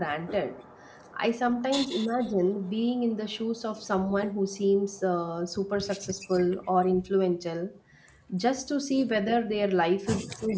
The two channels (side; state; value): both; identical; correlation 1.00